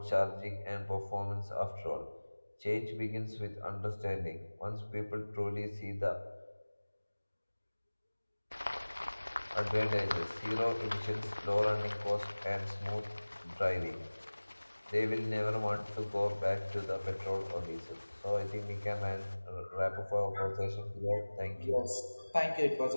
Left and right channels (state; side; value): inverted; both; correlation -1.00